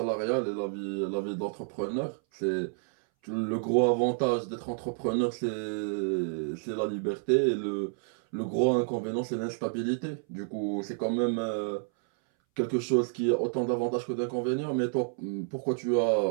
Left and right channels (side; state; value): left; silent; 58 dB below the other